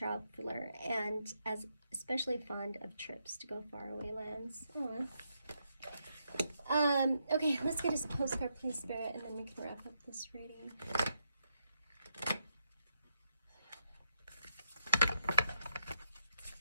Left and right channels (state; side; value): inverted; both; correlation -0.81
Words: and as especially fond of trips to go faraway lands. Okay, let's get a postcard, please, Spirit, and then we can wrap up this reading.